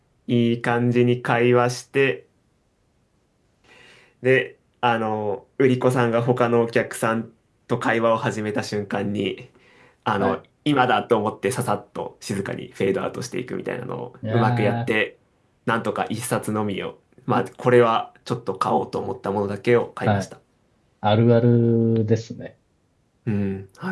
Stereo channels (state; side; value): identical; both; correlation 1.00